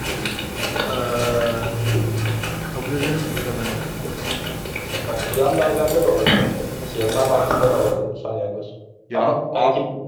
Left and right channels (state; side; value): identical; both; correlation 1.00